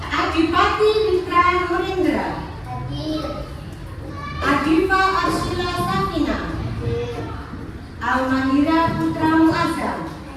Adipati Mitra Nurendra. Adifa Arshila Safina. Almahira Putra Muazzam.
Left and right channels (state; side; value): identical; both; correlation 1.00